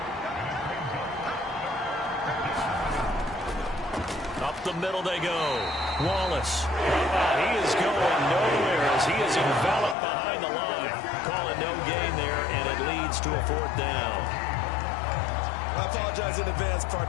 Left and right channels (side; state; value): right; drops out; at 10.0 s